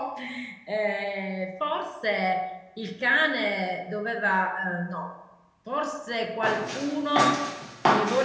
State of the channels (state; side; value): identical; both; correlation 1.00